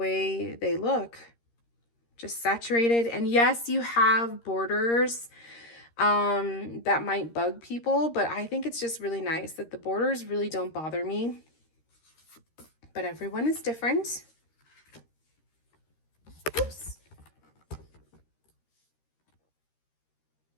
they look. Just saturated. And yes, you have borders that might bug people, but I think it's just really nice that the borders really don't bother me. But everyone is different. Oops.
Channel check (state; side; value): late; right; 13 ms